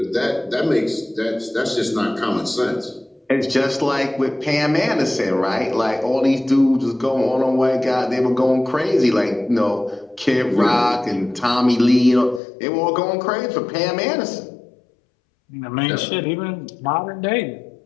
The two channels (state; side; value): drops out; right; at 12.4 s